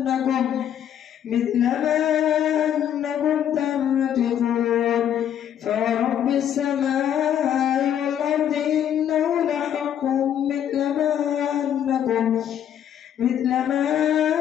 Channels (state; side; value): quieter; right; 9.8 dB